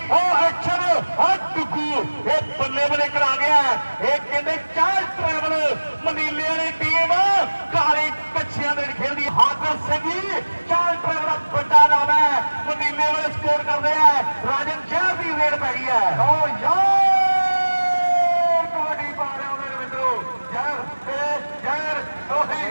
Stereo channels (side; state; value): both; inverted; correlation -1.00